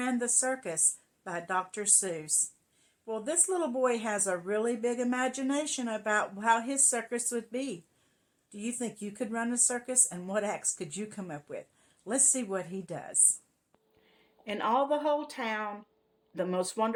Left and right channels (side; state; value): both; identical; correlation 1.00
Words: the Circus by Dr. Seuss. Well, this little boy has a really big imagination about how his circus would be. Do you think you could run a circus, and what acts could you come up with? Let's see what he does. In all the whole town, the most